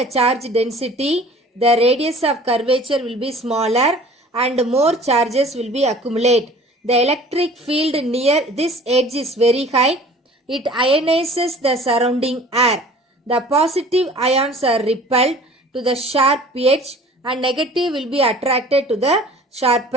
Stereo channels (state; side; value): normal; both; correlation 0.47